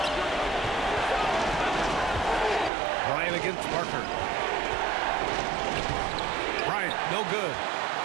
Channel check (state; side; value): drops out; left; at 2.7 s